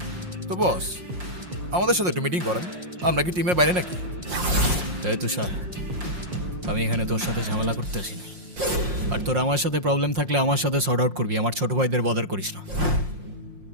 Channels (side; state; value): left; late; 5.6 ms